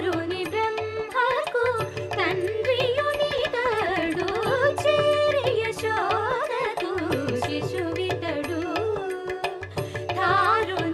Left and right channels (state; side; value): identical; both; correlation 1.00